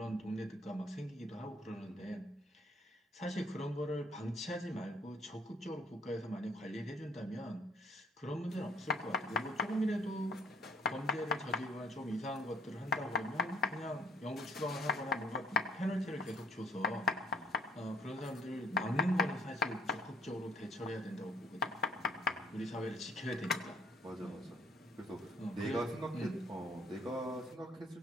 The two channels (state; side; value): normal; both; correlation 0.59